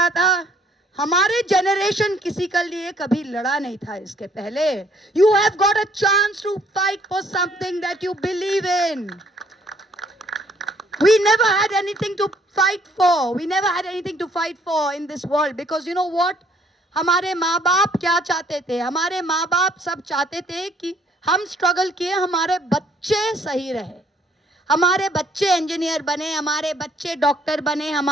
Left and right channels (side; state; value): both; normal; correlation 0.63